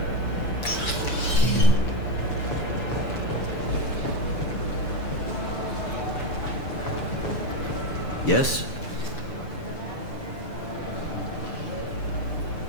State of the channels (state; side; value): late; right; 7.0 ms